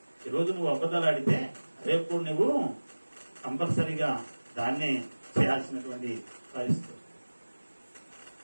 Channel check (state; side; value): inverted; both; correlation -1.00